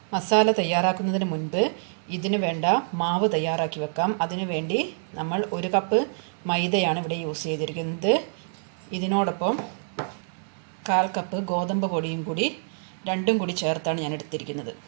മസാല തയ്യാറാക്കുന്നതിന് മുൻപ് ഇതിന് വേണ്ട മാവ് തയ്യാറാക്കി വെക്കാം. അതിനു വേണ്ടി നമ്മൾ 1 കപ്പ് മൈദയാണ് ഇവിടെ യൂസ് ചെയ്തിരിക്കുന്നത്. ഇതിനോടൊപ്പം 1/4 കപ്പ് ഗോതമ്പ് പൊടിയും കൂടി രണ്ടും കൂടി ചേർത്താണ് ഞാൻ എടുത്തിരിക്കുന്നത്.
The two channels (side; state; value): left; silent; digital silence